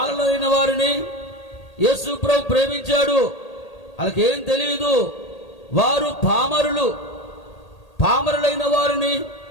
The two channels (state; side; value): late; right; 1.8 ms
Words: వారిని యేసు ప్రభు ప్రేమించాడు. వాళ్ళకేం తెలియదు, వారు పామరులైన వారిని,